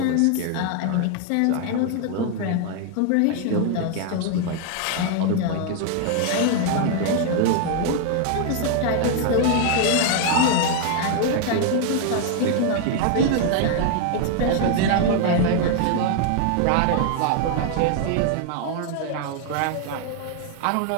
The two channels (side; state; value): both; different; correlation 0.00